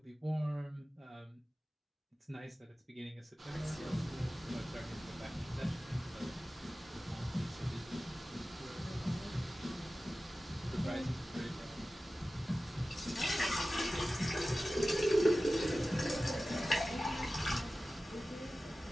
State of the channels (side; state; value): both; normal; correlation 0.96